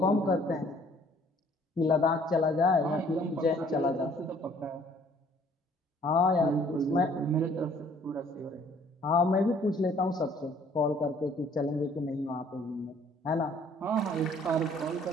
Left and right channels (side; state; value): both; normal; correlation 0.59